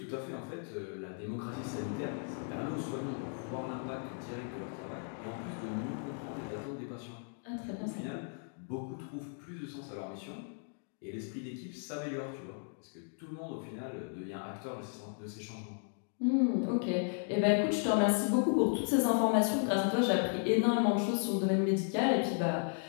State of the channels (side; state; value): right; silent; 54 dB below the other